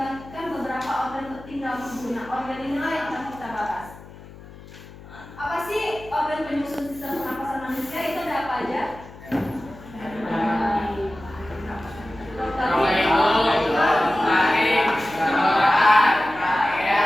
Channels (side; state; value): left; noise; hum, 18 dB below the sound